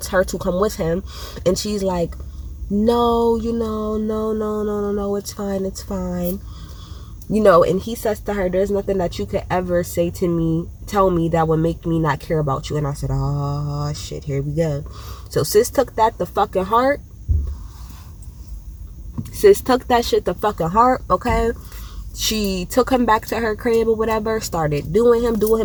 come with him. And she's like, no, no, it's fine. And he says to her, there's nothing that you could ever tell me that would make me not care about you. And I said, oh shit, here we go. So sis took that the fucking heart. Sis took that shit the fucking heart, okay? She took him back to her crib or whatever, started doing him,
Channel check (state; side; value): identical; both; correlation 1.00